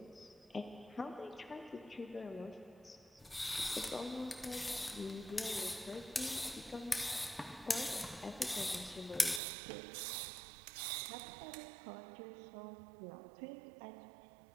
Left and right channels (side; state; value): left; drops out; at 9.4 s